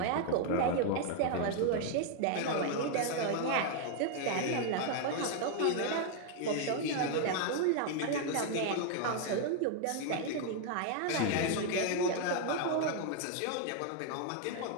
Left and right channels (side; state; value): both; different; correlation 0.00